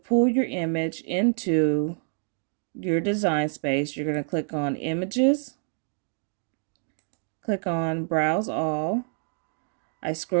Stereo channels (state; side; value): silent; left; 60 dB below the other